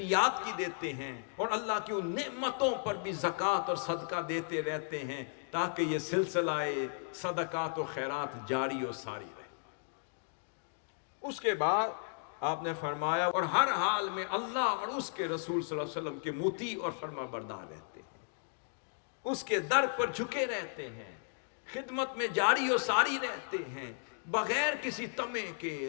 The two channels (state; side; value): silent; right; digital silence